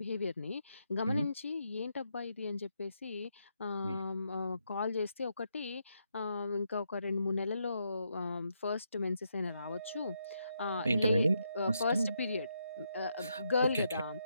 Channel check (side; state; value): both; inverted; correlation -0.80